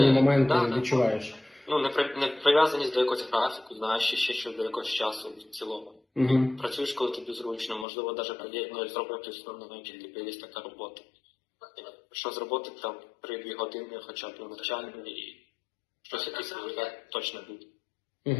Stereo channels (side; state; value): right; drops out; at 7.9 s